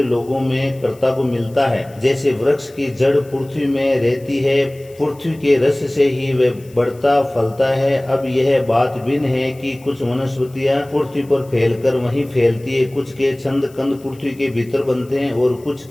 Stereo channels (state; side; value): noise; left; hiss, 27 dB below the sound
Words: लोगों में कर्ता को मिलता है। जैसे वृक्ष की जड़ पृथ्वी में रहती है, पृथ्वी के रस से ही वह बढ़ता फलता है। अब यह बात भिन्न है कि कुछ वनस्पतियां पृथ्वी पर फैलकर वहीं फैलती है, कुछ के छंद कंद पृथ्वी के भीतर बनते हैं और कुछ